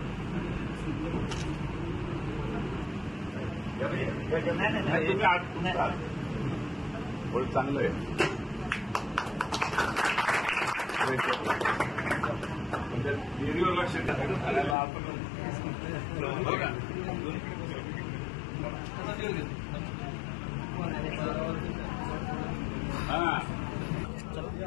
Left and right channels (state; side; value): drops out; right; at 14.8 s